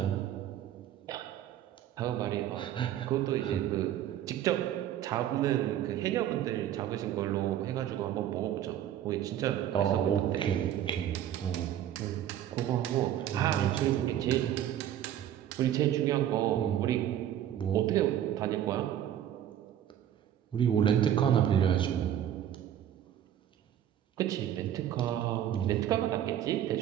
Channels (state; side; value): quieter; left; 11.0 dB